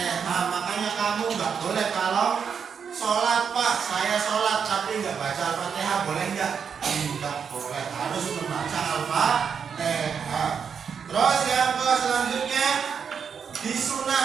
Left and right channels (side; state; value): left; quieter; 6.8 dB